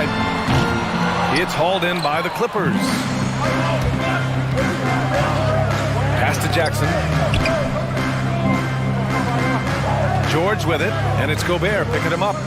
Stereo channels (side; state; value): both; identical; correlation 1.00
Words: It's hauled in by the Clippers. Pass to Jackson. George with it, and it's Gobert picking him up.